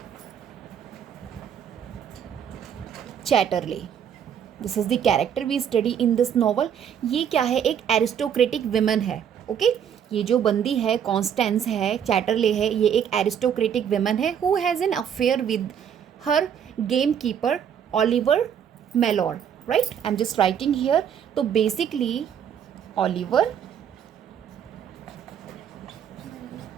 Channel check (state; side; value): quieter; left; 8.5 dB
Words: Chatterley. This is the character we study in this novel. ये क्या है, एक aristocratic women है. Okay, ये जो बंदी है कॉन्स्टेंस है, चैटरले है, ये एक एरिस्टोक्रेटिक वुमन है who has an affair with her gamekeeper Oliver Mellor, right. I am just writing here. तो बेसिकली ओलिवर